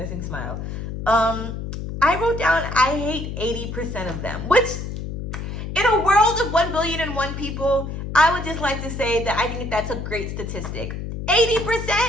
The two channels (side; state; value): left; noise; hum, 6 dB below the sound